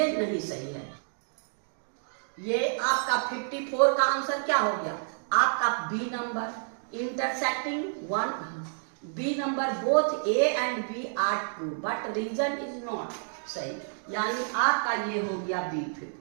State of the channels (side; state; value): left; silent; digital silence